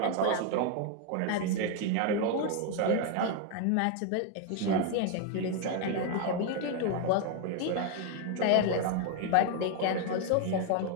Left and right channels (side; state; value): both; different; correlation 0.01